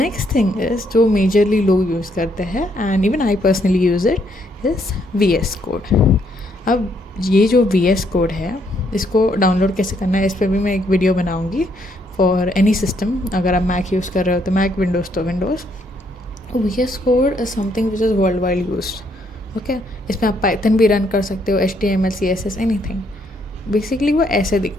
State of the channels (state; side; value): normal; both; correlation 0.72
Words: थिंग इज़ जो मेजरली लोग यूज़ करते हैं and even I personally use it is VS code. अब ये जो VS कोड है इसको डाउनलोड कैसे करना है इस पर भी मैं एक वीडियो बनाऊँगी फॉर एनी सिस्टम। अगर आप मैक यूज़ कर रहे हो तो मैक, विंडोज़ तो Windows. VS code is something which is world wide used. Okay, इसमें आप पाइथन भी रन कर सकते हो, HTML, CSS, एनीथिंग। बेसिकली वो ऐसे